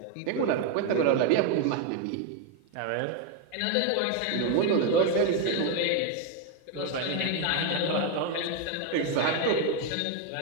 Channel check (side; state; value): both; different; correlation 0.01